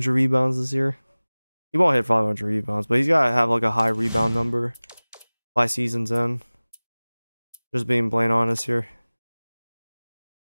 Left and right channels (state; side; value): inverted; both; correlation -1.00